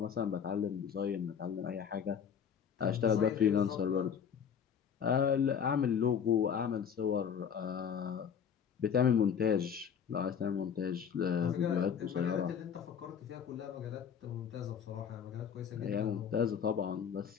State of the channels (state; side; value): quieter; right; 7.6 dB